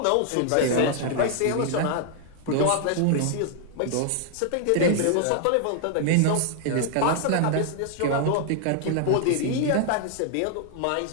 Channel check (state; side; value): different; both; correlation 0.00